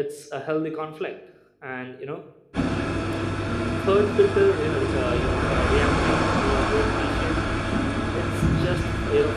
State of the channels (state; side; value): identical; both; correlation 1.00